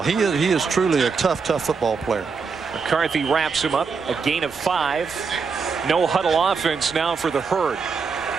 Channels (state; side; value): quieter; left; 5.3 dB